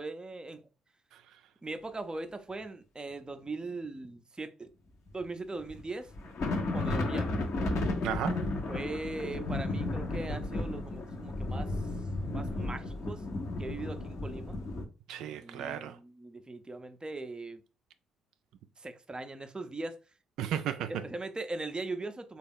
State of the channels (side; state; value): both; normal; correlation 0.75